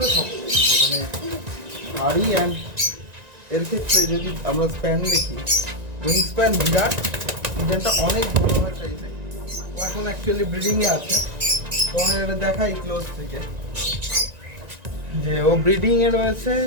শক্ত, মানে ভারী। অ্যান্ড এর ক্ষেত্রে যদি আমরা স্প্যান দেখি, উইং স্প্যান বিরাট, পিজনটা অনেক বড় হয় সাইজে। ও এখন অ্যাকচুয়ালি ব্রিডিংয়ে আছে, তোমার এটা দেখাই ক্লোজ থেকে যে ও ব্রিডিংয়ে রয়েছে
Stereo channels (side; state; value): left; late; 1.9 ms